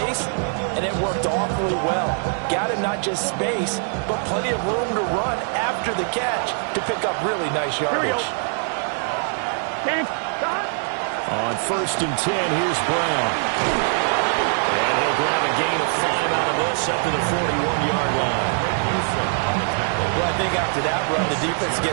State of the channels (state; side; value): silent; left; 56 dB below the other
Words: and it worked awfully well. Got him not just space, but plenty of room to run after the catch to pick up really nice yardage. On 1st and 10, here's Brown. And he'll grab a gain of 5 out of this up to the 41-yard line. after that run, the defense